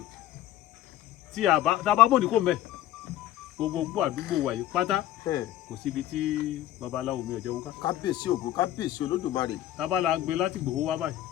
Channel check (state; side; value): quieter; right; 13.3 dB